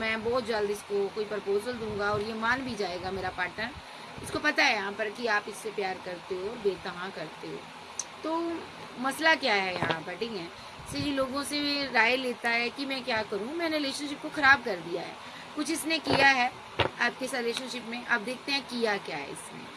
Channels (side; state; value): both; identical; correlation 1.00